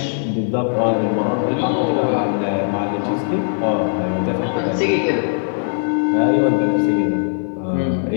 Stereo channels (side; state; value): right; silent; digital silence